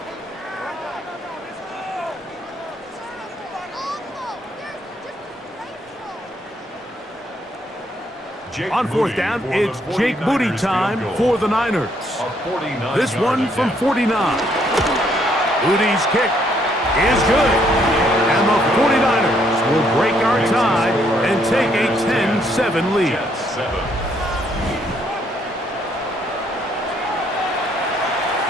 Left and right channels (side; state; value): both; normal; correlation 0.70